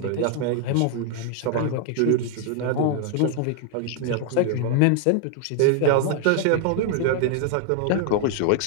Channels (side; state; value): both; different; correlation 0.00